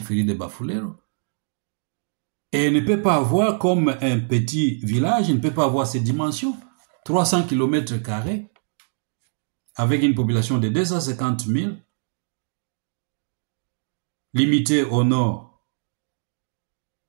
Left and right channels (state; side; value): silent; left; digital silence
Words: de Bafulero. Et il ne peut pas avoir comme un petit village, il ne peut pas avoir ces dimensions. 300 km², avec une population de 250 000, limitée au nord